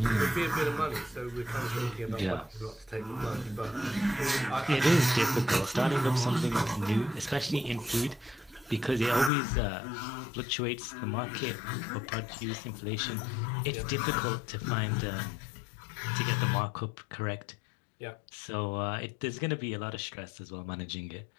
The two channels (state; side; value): drops out; right; at 9.3 s